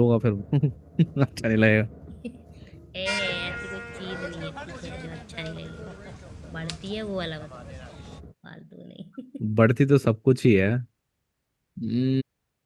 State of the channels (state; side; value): identical; both; correlation 1.00